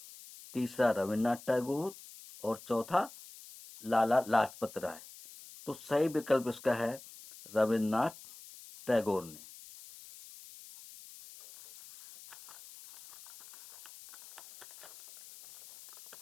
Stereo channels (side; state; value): left; noise; hiss, 18 dB below the sound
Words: तीसरा रविन्द्रनाथ टैगोर, और चौथा लाला लाजपत राय। तो सही विकल्प इसका है रविन्द्रनाथ टैगोर ने।